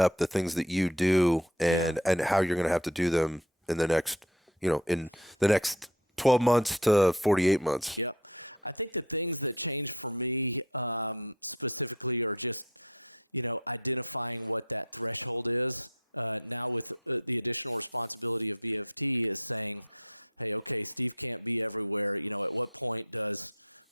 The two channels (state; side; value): normal; both; correlation 0.39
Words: the things that you do and how you're going to have to do them in the next, in the next 12 months to 48 months? Yep. I think the things that change for me specifically are just, identifying what that threshold is. Now with the additional responsibility of BFT is saying, hey, okay, Steve can't be everywhere. At what point does